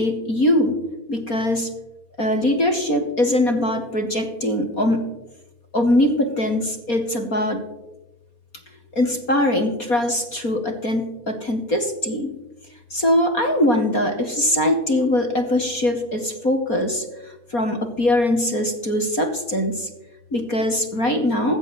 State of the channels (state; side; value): late; right; 4.2 ms